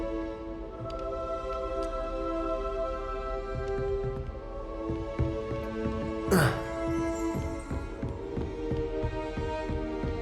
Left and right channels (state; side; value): identical; both; correlation 1.00